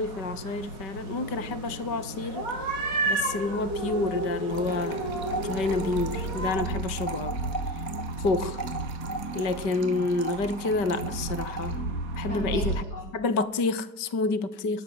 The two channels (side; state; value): right; late; 5.1 ms